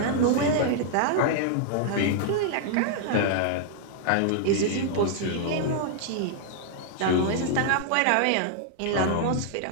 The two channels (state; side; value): different; both; correlation -0.01